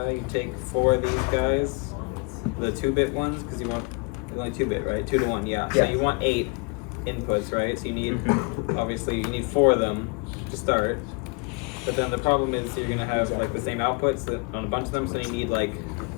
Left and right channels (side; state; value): right; quieter; 32.7 dB